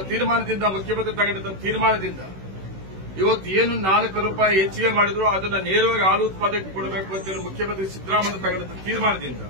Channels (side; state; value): left; late; 16 ms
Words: ತೀರ್ಮಾನದಿಂದ ಮುಖ್ಯಮಂತ್ರಿ ತಗೊಂಡಿದ್ದ ತೀರ್ಮಾನದಿಂದ ಇವತ್ತು ಏನು ₹4 ಹೆಚ್ಚಿಗೆ ಮಾಡಿದ್ರು ಅದನ್ನ ನೇರವಾಗಿ ಹಾಲು ಉತ್ಪಾದಕರಿಗೆ ಕೊಡಬೇಕು ಅಂತೇಳಿ ಮುಖ್ಯಮಂತ್ರಿ ಸಿದ್ದರಾಮಯ್ಯ ತಗೊಂಡಿದ್ದ ತೀರ್ಮಾನದಿಂದ